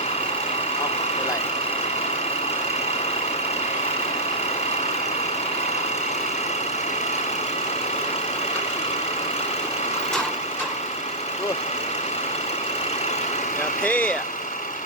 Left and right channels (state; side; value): normal; both; correlation -0.09